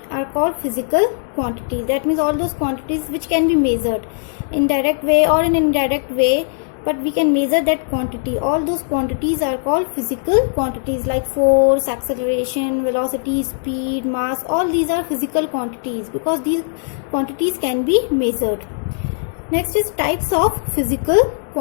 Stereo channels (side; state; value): right; silent; digital silence